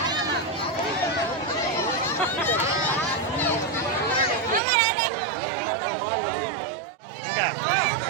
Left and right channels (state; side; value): drops out; left; at 4.6 s